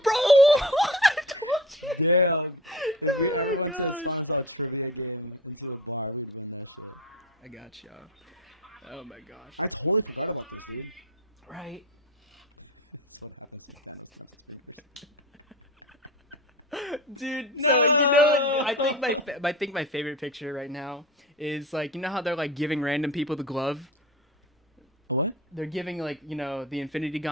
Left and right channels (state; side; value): normal; both; correlation 0.30